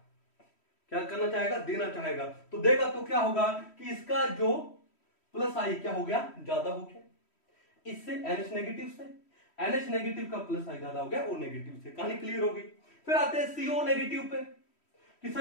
क्या करना चाहेगा, देना चाहेगा। तो देगा तो क्या होगा कि इसका जो +I क्या हो गया, ज्यादा हो गया, इससे NH नेगेटिव से, NH नेगेटिव का +I ज्यादा हो गया O नेगेटिव से। कहानी क्लियर होगी। फिर आते हैं CO नेगेटिव पे कि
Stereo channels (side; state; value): right; late; 3.1 ms